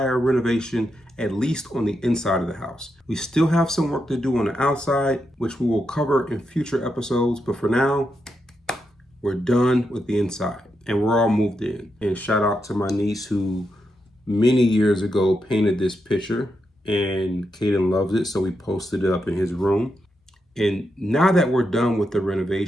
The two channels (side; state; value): both; normal; correlation 0.84